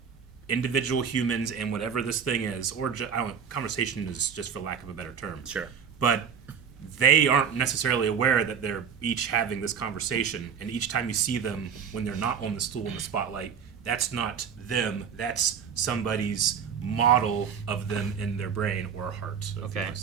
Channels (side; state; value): left; quieter; 7.2 dB